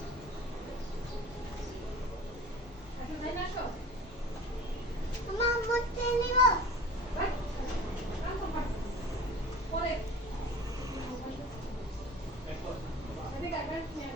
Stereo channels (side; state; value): both; normal; correlation 0.39